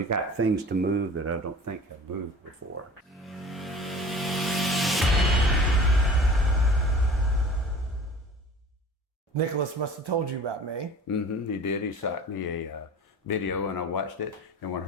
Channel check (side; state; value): both; normal; correlation 0.42